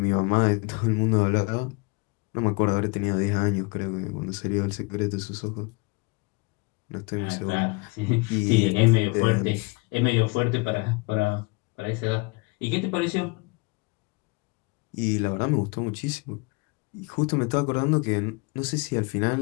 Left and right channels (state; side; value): quieter; right; 28.3 dB